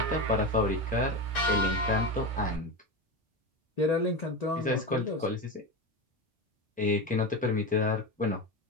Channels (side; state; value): both; normal; correlation 0.20